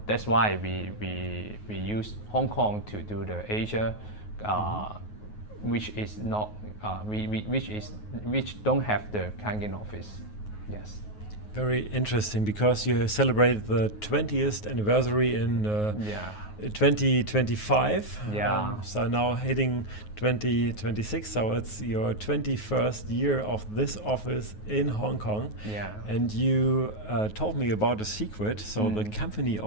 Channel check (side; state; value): right; late; 9.4 ms